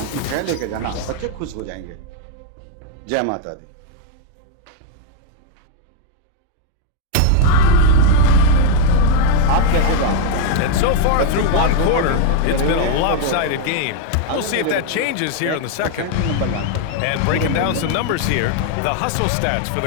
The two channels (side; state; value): both; different; correlation 0.00